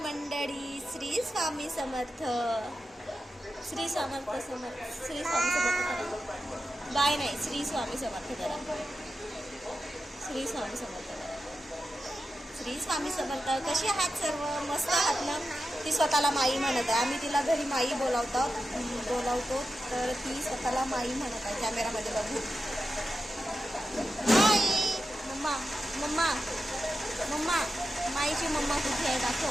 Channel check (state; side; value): normal; both; correlation 0.91